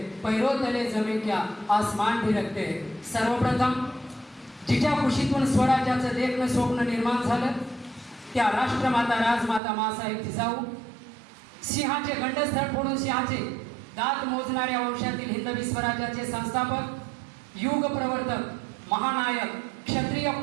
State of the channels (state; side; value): drops out; left; at 9.6 s